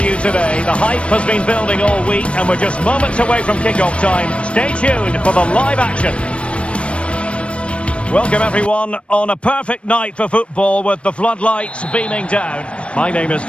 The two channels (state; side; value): late; right; 0.060 ms